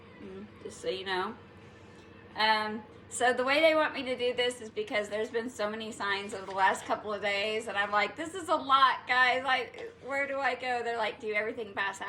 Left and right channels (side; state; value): both; identical; correlation 1.00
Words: just so you know. So the way they want me to do this is because there's been so many signs over the last couple of days, and I'm like, this is a lot, guys. Like, where do I go? They're like, do everything